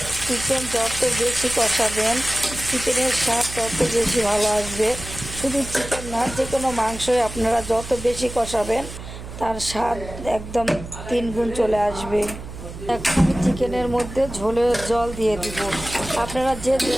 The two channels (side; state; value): right; noise; hum, 12 dB below the sound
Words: চিকেন যত বেশি কষাবেন চিকেনের স্বাদ তত বেশি ভালো আসবে। শুধু চিকেন না, যে কোনো মাংসই আপনারা যত বেশি কষাবেন তার স্বাদ একদম 3 গুণ চলে আসবে। এখন আমি চিকেনের মধ্যে ঝোলের জল দিয়ে দিব। আপনারা যে